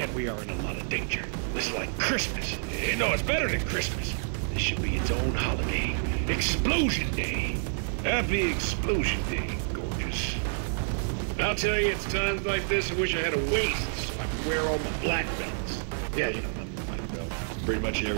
we are in a lot of danger. This is like Christmas. No, it's better than Christmas. This should be its own holiday. Explosion Day. Happy Explosion Day, gorgeous. I'll tell you, it's times like this I wish I had a waist so I could wear all my black belts. Yeah, you know, I'm a black belt. Pretty much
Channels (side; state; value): left; silent; digital silence